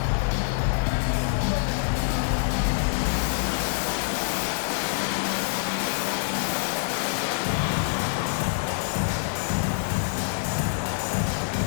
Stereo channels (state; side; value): silent; right; digital silence